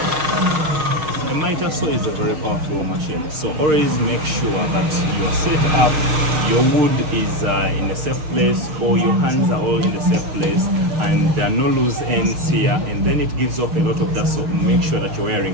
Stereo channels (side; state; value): left; late; 6.5 ms